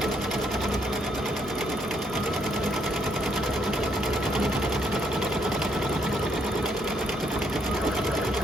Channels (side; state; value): both; normal; correlation 0.72